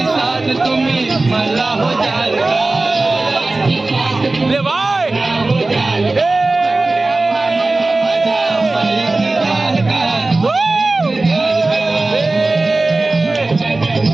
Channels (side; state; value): left; quieter; 3.2 dB